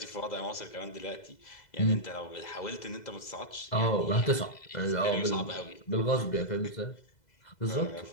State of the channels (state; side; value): late; right; 2.0 ms